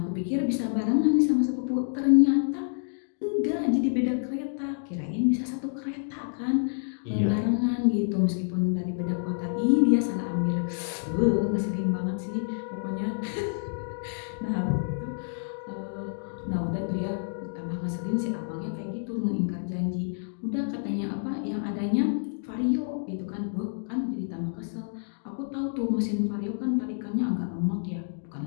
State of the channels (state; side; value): silent; right; digital silence